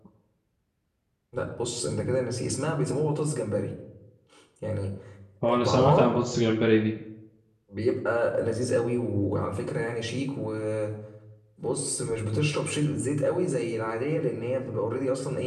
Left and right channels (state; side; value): identical; both; correlation 1.00